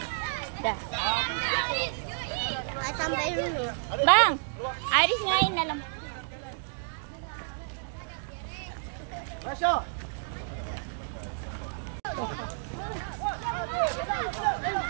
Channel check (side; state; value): left; silent; digital silence